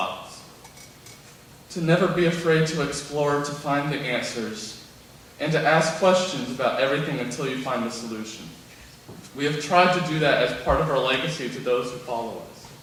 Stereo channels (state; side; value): identical; both; correlation 1.00